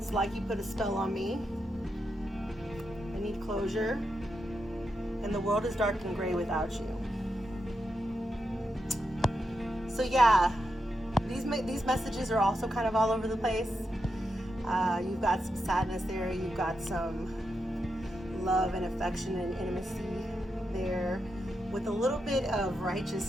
like you put a spell on me. I need closure. And the world is dark and gray without you. So yeah, these messages are also kind of all over the place. You've got some sadness there. You've got some love and affection and intimacy there, with a little bit of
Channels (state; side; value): normal; both; correlation 0.86